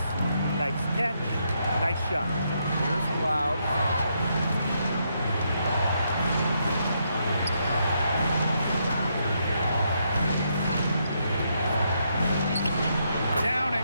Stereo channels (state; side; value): inverted; both; correlation -0.78